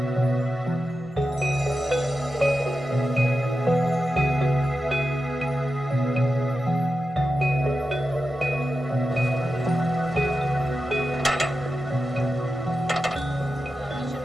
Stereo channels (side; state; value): both; normal; correlation 0.91